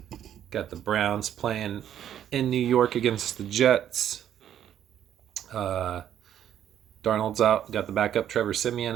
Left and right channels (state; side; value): quieter; left; 10.4 dB